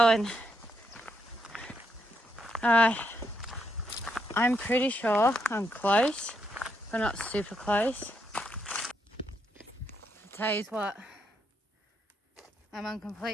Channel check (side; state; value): both; normal; correlation 0.78